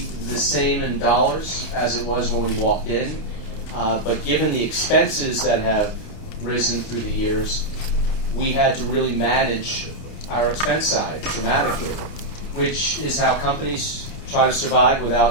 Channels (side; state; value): right; late; 29 ms